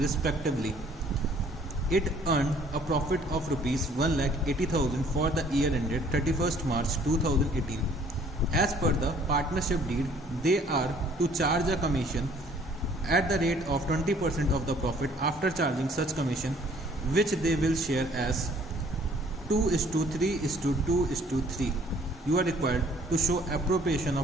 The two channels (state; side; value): normal; both; correlation 0.58